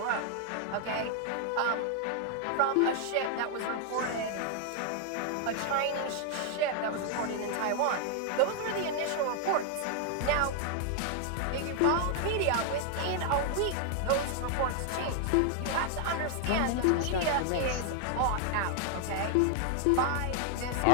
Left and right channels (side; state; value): both; different; correlation 0.00